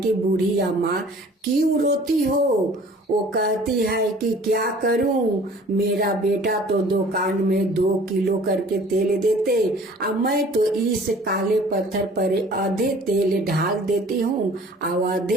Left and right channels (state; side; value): normal; both; correlation 0.50